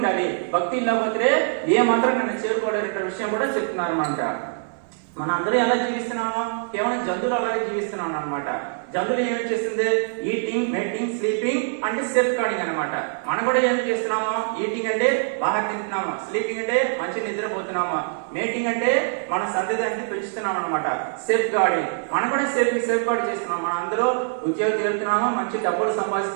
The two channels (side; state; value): left; silent; 63 dB below the other